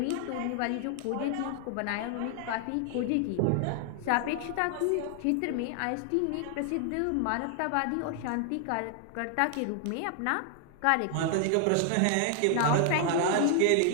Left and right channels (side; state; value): both; different; correlation 0.00